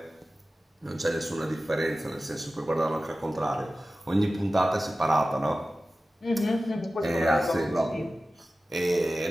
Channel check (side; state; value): both; normal; correlation 0.95